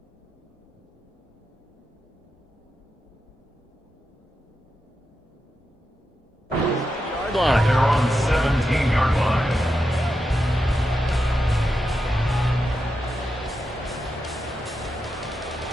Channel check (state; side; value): normal; both; correlation 0.87